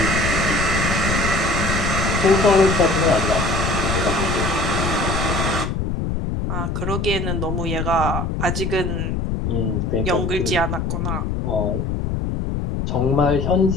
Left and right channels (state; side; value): noise; left; rumble, 1 dB below the sound